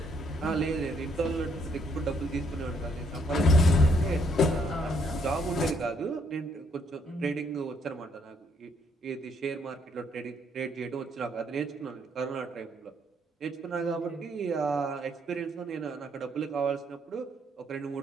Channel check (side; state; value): both; normal; correlation 0.69